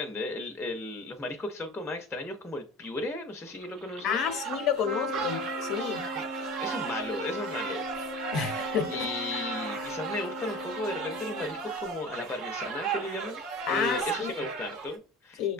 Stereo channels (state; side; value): normal; both; correlation 0.37